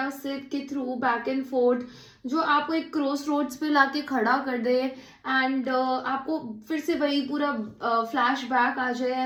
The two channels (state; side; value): identical; both; correlation 1.00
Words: से के थ्रू, बैक एंड फोर्थ, जो आपको एक क्रॉस रोड्स पे लाके खड़ा कर दे एंड आपको फिर से वही पूरा फ्लैश बैक आ जाए